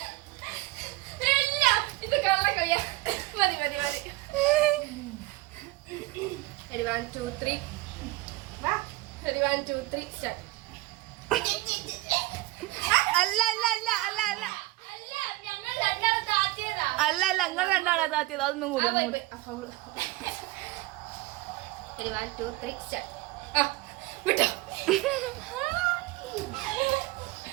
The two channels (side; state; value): left; quieter; 19.7 dB